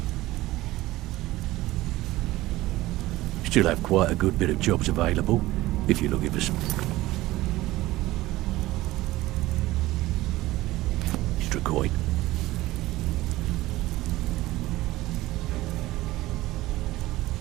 Still have quite a good bit of jobs available, if you're looking for some extra coin.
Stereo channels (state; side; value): quieter; left; 17.6 dB